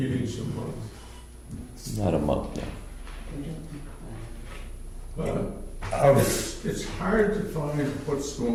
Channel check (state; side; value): identical; both; correlation 1.00